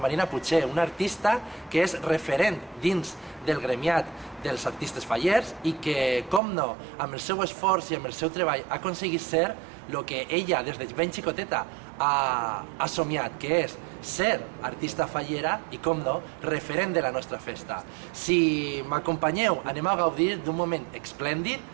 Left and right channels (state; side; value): drops out; left; at 6.4 s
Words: Puig, una artista que és referent dins del gremiat dels artistes fallers i que, com no, amb el seu esforç i amb el seu treball ha aconseguit ser el que ella des de ben xicoteta ha somiat, que és ser artista fallera i, com no, referent de la nostra festa. Si m'acompanyeu, anem a gaudir d'un moment